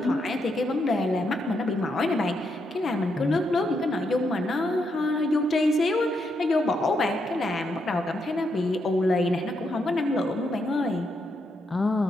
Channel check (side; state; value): both; normal; correlation 0.80